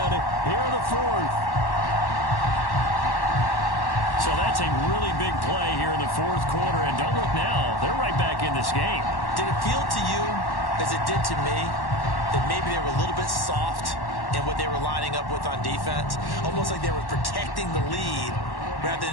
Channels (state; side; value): late; right; 1.1 ms